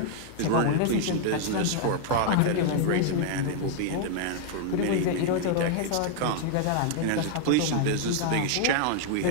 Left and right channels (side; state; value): both; different; correlation 0.00